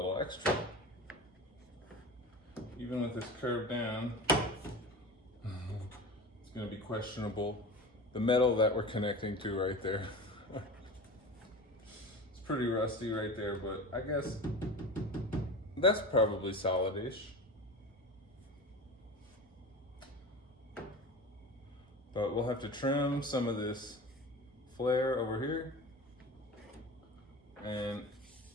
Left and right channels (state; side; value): normal; both; correlation 0.32